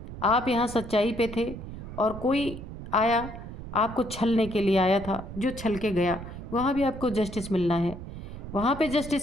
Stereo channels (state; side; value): noise; right; rumble, 11 dB below the sound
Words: आप यहाँ सच्चाई पे थे और कोई आया, आपको छलने के लिए आया था, जो छल के गया। वहाँ भी आपको जस्टिस मिलना है। वहाँ पे